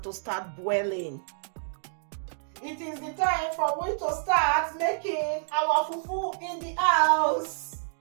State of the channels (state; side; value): silent; left; digital silence